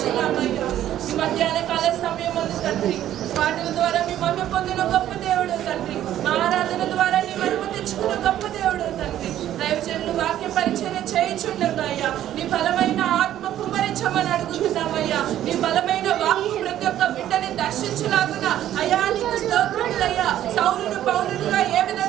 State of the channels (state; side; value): quieter; left; 12.1 dB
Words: ఈ మధ్యాహ్న కాల సమయం ఉంది తండ్రి, పాటల ద్వారా మీ మహిమ పొందిన గొప్ప దేవుడు తండ్రి. మా ఆరాధన ద్వారా నీ మహిమ తెచ్చుకున్న గొప్ప దేవుడు తండ్రి. దైవజనులు వాక్య పరిచర్య చేయించుండగా అయ్యా నీ బలమైన ఆత్మ కుమ్మరించమని అడుగుతున్నామయ్యా. నీ బలమైన వాక్కు ప్రతి ఒక్క బిడ్డని దర్శించలాగున అయ్యా నీకు స్తోత్రములయ్యా. సౌలును పౌలునుగా ఏ